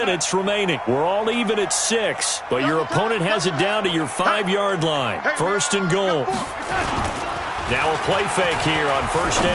remaining. We're all even at 6, but your opponent has it down to your 5-yard line. First and goal. Now a play fake here on first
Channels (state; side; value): identical; both; correlation 1.00